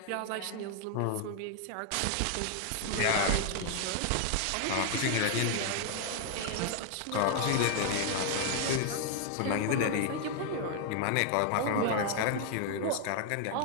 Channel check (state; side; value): different; both; correlation 0.00